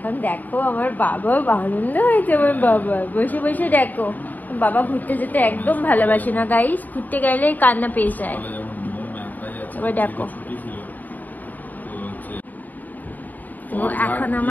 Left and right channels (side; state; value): right; late; 0.083 ms